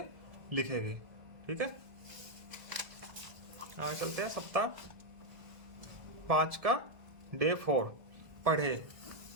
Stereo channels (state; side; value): late; left; 1.6 ms